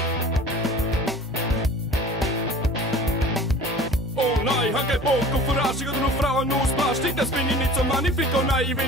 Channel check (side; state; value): both; normal; correlation 0.43